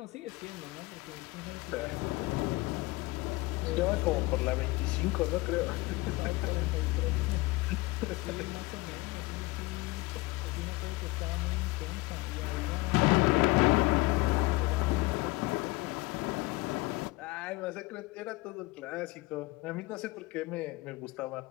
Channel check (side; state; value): right; quieter; 21.7 dB